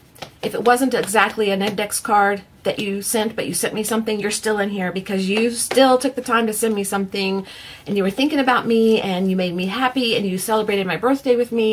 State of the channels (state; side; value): identical; both; correlation 1.00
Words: if it wasn't exactly an index card that you sent, but you sent me something, you're still in here because you still took the time to send me something, and you were thinking about me, and you made me happy, and you celebrated my birthday with